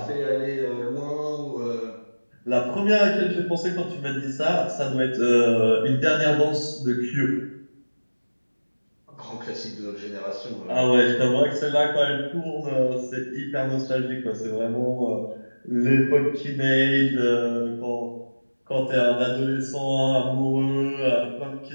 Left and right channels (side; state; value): both; inverted; correlation -1.00